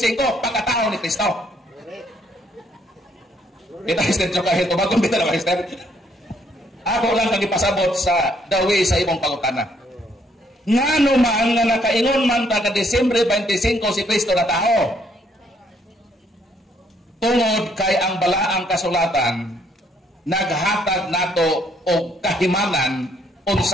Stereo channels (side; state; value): both; normal; correlation 0.68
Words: pagkatao ni Kristo. Kita Esther jo kahit tubag kung bitaw Esther. Ako lang kang ipasabot sa dawi sa imong pangutana. Ngano man nga nakaingon man ta ka Disyembre 25 si Kristo na tao. Tungod kay ang balaang kasulatan naghatag nato og kahimanan